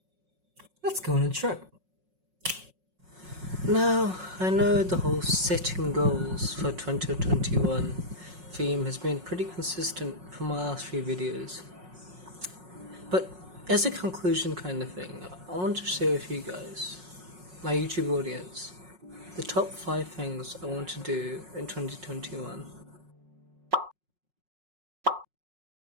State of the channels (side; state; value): left; late; 5.5 ms